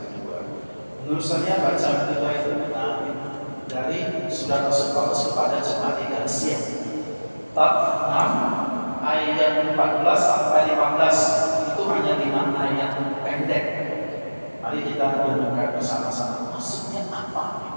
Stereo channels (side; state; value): both; inverted; correlation -1.00